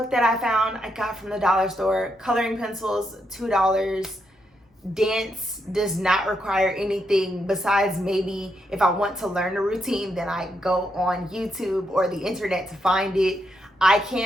that I found, I got from the dollar store. Coloring pencils, $2. Dance does not require anything besides maybe if I want to learn a routine, then I go on YouTube or the internet to find it. I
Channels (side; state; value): both; normal; correlation 0.80